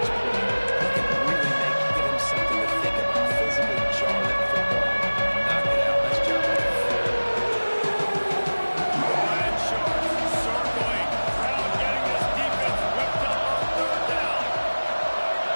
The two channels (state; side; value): inverted; both; correlation -1.00